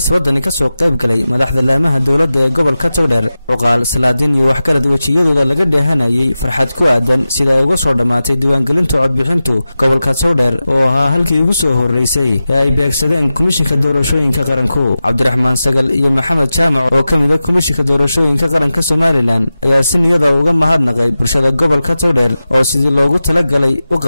ka soo qayb galay madaxda laamaha dawladda ee gobolka Togdheer cuqaal salaadiin iyo waxgarad wajiyadooda laga dheehanayay farxad ku aadan sida ay uga soo dhamaatay diiwaangelinta codbixintu gobolka Togdheer oo ahaa halkii ugu soo horeysay ee ay beegsadeen komishinka doorashooyinka qaranku Cabdiraxmaan Sagal iyo Maxamed Jaamac oo kamid ah komishinka doorashooyinka qaranka Soomaaliland ayaa si niyada uga mahadnaqay bulshada gobolka Togdheer oo sidii loogu talagalay u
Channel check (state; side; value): inverted; both; correlation -0.94